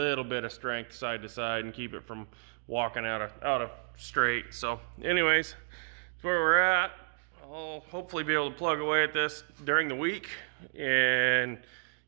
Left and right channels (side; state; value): left; silent; digital silence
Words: bit of strength side to side and keep it from walking out of straight. So anyways, that's where we're at. I'll hopefully be able to plug away at this during the week and